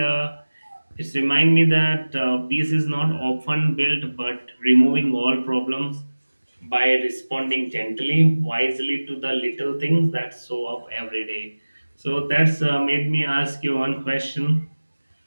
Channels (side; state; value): both; inverted; correlation -1.00